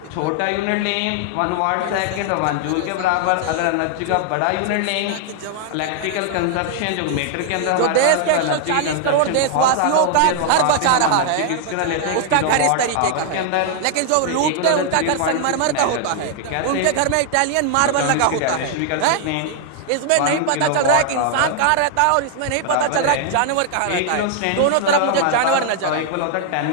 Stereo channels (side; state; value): both; different; correlation 0.00